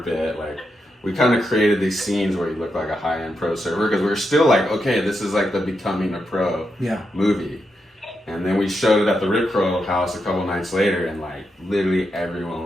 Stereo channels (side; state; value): both; normal; correlation 0.84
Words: Like, we kind of created these scenes where he looked like a high-end pro surfer because we were still like, okay, this is like the becoming a pro movie. And then we showed it at the Rip Curl house a couple nights later, and like literally